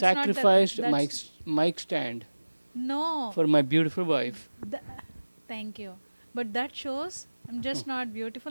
sacrificed That's mic stand no. for my beautiful wife. Th- Thank you. But that shows I'm just not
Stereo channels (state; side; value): inverted; both; correlation -1.00